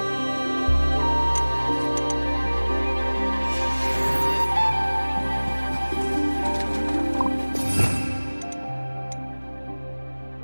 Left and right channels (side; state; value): both; inverted; correlation -1.00